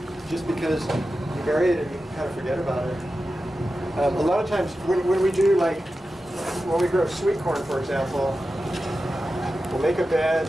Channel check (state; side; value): normal; both; correlation 0.92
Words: just because you bury it and you kind of forget about it. A lot of times when we do, like when we grow sweet corn, for example, we'll make a bed,